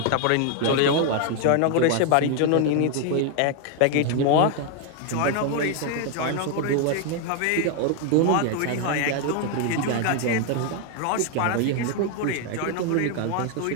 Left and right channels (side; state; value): both; different; correlation 0.01